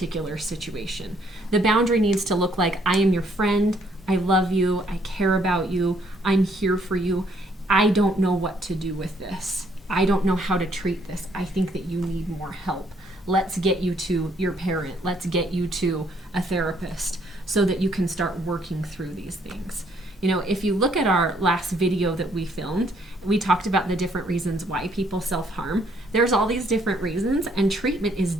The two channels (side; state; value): both; normal; correlation 0.67